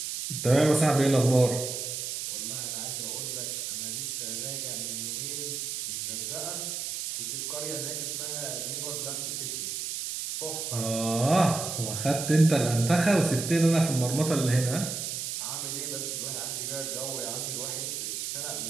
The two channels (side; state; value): right; noise; hiss, 4 dB below the sound